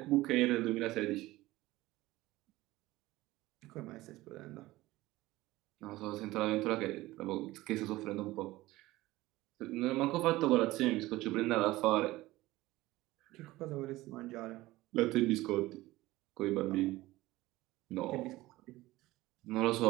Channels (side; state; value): left; quieter; 18.1 dB